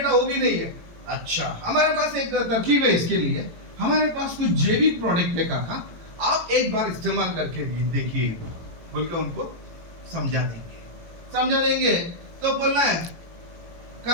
वो भी नहीं है। अच्छा, हमारे पास एक तरकीब है इसके लिए। हमारे पास कुछ जैविक प्रोडक्ट है काका, आप एक बार इस्तेमाल करके देखिए, बोल के उनको समझा देंगे। तो बोलना है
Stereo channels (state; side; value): late; left; 18 ms